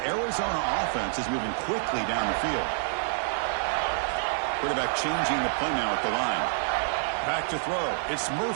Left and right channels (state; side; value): silent; left; digital silence